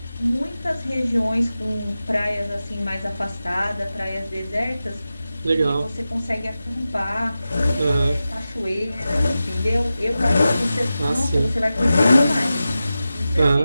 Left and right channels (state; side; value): inverted; both; correlation -0.94